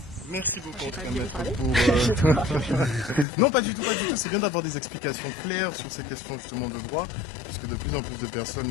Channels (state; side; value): drops out; right; at 3.2 s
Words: Merci beaucoup, J'ai en tout pas cas, dû maître, parler. pour... Non, pas du tout, pas du tout. C'est bien d'avoir des explications claires sur ces questions justement de droit, parce que de plus en plus de